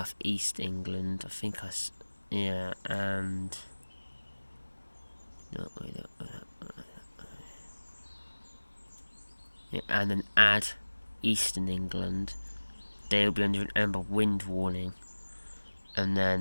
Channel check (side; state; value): both; inverted; correlation -1.00